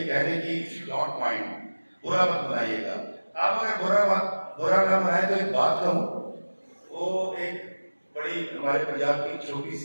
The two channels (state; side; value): inverted; both; correlation -1.00